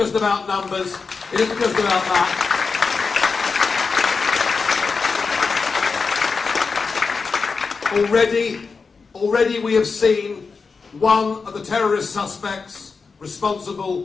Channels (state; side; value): quieter; right; 4.8 dB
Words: about numbers, it isn't just about that. Already we have seen one of the terrorist suspects